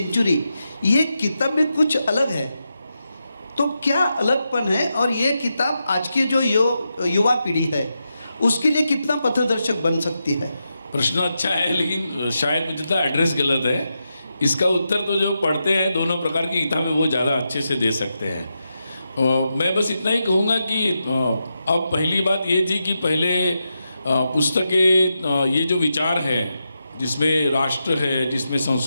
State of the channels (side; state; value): both; inverted; correlation -0.87